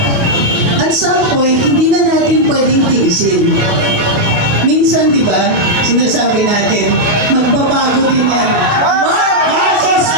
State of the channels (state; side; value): late; left; 29 ms